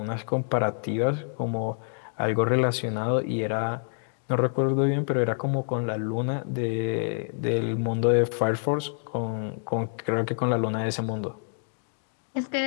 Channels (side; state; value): right; silent; digital silence